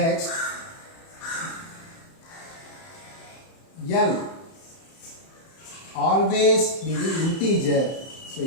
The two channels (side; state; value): right; late; 30 ms